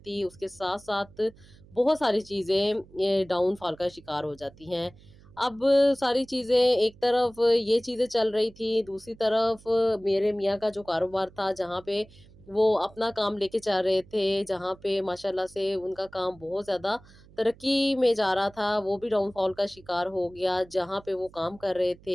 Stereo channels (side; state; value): right; noise; hum, 24 dB below the sound